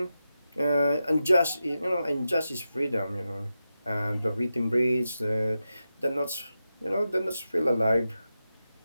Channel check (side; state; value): both; inverted; correlation -0.90